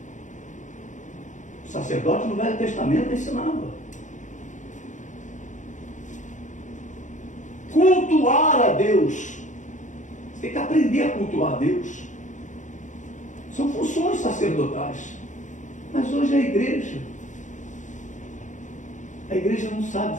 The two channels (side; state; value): right; late; 0.36 ms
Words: O sacerdote no Velho Testamento ensinava. Cultuar a Deus. Você tem que aprender a cultuar a Deus. São funções sacerdotais. Mas hoje a igreja não